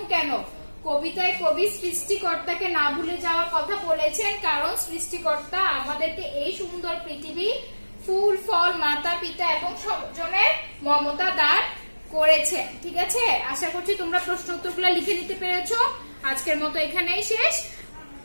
কেন, কবিতায় কবি সৃষ্টিকর্তাকে না ভুলে যাওয়ার কথা বলেছেন, কারণ সৃষ্টিকর্তা আমাদেরকে এই সুন্দর পৃথিবী, ফুল ফল, মাতা পিতা এবং স্বজনের মমতা দান করেছেন, ঠিক আছে। আশা করছি তোমরা প্রশ্ন উত্তরগুলো লিখে নিতে পেরেছো। আজকের মতো এখানেই শেষ।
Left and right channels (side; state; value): both; inverted; correlation -1.00